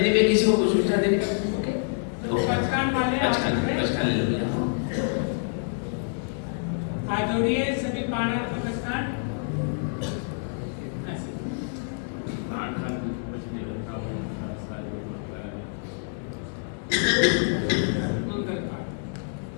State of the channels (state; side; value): silent; right; 60 dB below the other